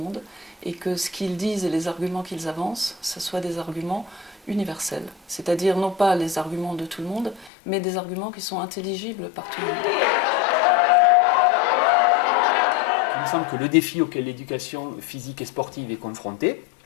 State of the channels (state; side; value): drops out; right; at 7.5 s